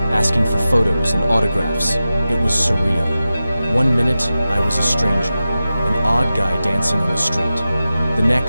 asking for photos and autographs. It was surreal. 1 minute, I was a stranger, an odd guy dancing on the street. The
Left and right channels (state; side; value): inverted; both; correlation -0.94